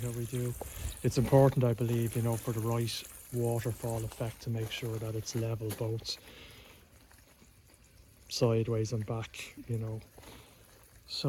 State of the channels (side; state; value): both; identical; correlation 1.00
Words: we do. It's important, I believe, you know, for the right waterfall effect, to make sure that it's level both sideways and back, you know.